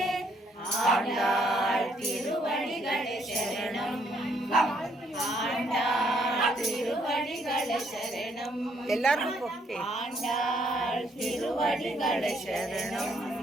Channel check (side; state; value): both; normal; correlation 0.69